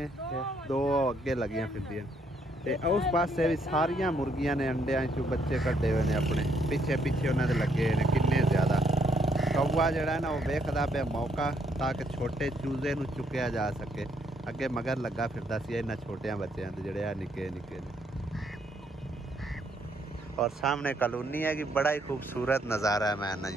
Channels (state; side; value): normal; both; correlation 0.72